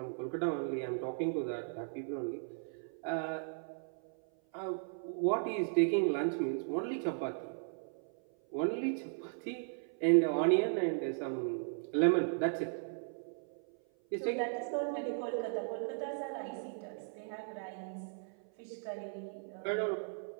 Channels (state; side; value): silent; left; 53 dB below the other